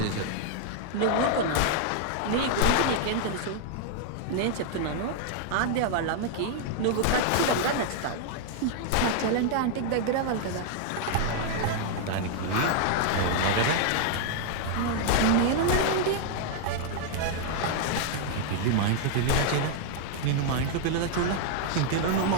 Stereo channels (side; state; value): both; different; correlation 0.00